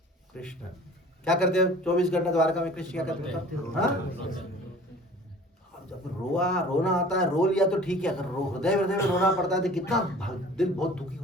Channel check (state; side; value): normal; both; correlation 0.46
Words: कृष्ण क्या करते हैं? 24 घंटा द्वारका में कृष्ण क्या करते हैं? हाँ, जब रोना आता है, रो लिया तो ठीक है, अगर हृदय हृदय में रोना पड़ता है तो कितना दिल बहुत दुखी